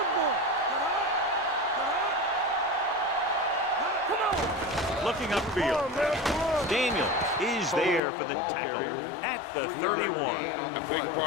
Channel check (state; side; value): drops out; right; at 8.0 s